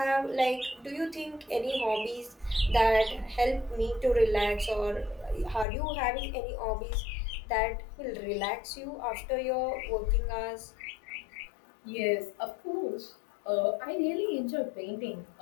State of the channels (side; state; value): right; drops out; at 5.7 s